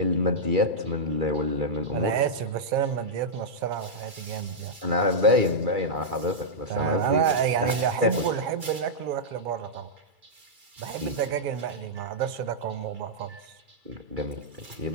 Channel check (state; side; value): late; left; 2.3 ms